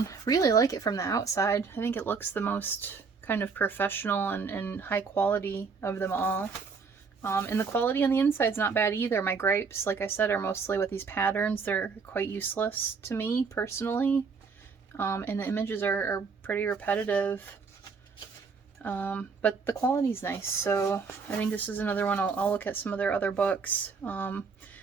Really like it from the outside. I think it looks the most kind of professional and high quality of them all. And the quality on the inside is not bad either. My gripes, like I said, are mostly with these patterns. They're quite useless to me personally. And the images are pretty repetitive. But the quality's nice, so I think this is another one. I'll look at some of their other books.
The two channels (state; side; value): quieter; left; 5.1 dB